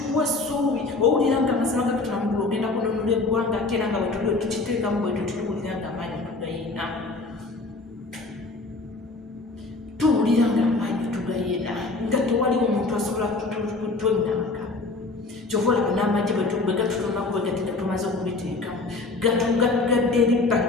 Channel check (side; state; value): right; quieter; 3.4 dB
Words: essuubi owulira nga amazima gakutula mugulu ogenda kununula eggwanga ate era nga bwetuli tukiteekamu bwetu tuwulira nga amaanyi tugayina nga tewaliwo omuntu asobola kutwennanga kyova olaba n'amagye bwe gatutonaku bwe gati gatumaze okubiteekamu gatugadde eribba